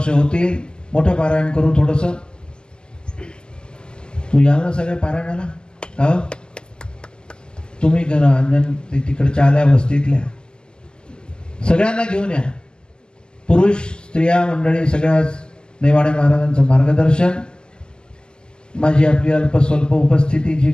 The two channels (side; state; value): right; late; 0.047 ms